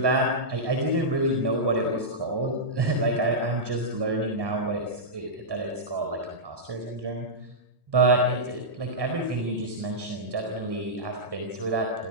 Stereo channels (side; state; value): left; late; 1.2 ms